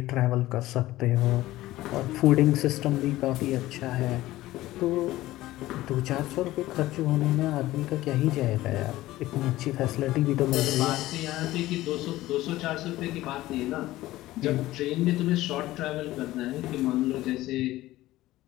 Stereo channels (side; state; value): right; quieter; 16.5 dB